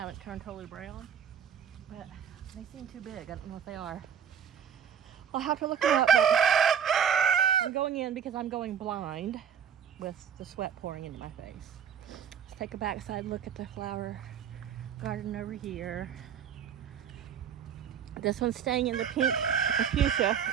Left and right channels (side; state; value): left; quieter; 8.2 dB